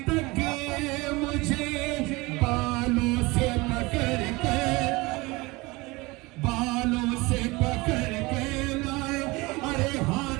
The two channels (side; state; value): left; quieter; 23.2 dB